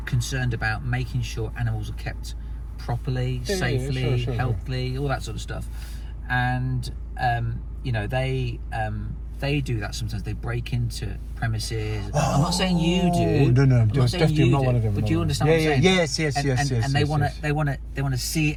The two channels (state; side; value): identical; both; correlation 1.00